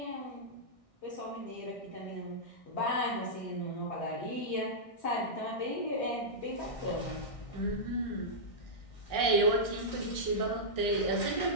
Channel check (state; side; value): late; right; 1.6 ms